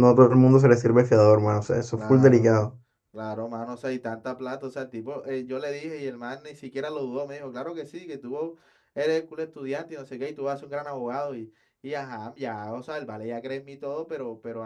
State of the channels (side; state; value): both; identical; correlation 1.00